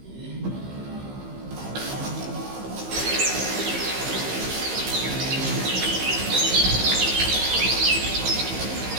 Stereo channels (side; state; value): left; late; 15 ms